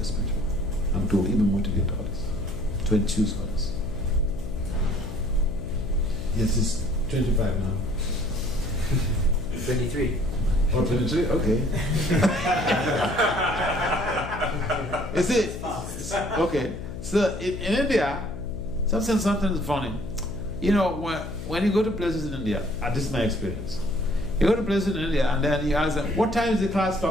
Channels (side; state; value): left; noise; hum, 9 dB below the sound